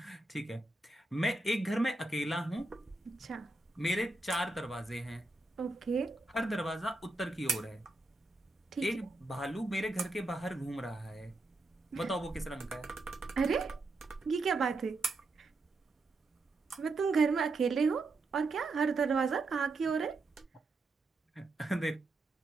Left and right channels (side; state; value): left; quieter; 3.2 dB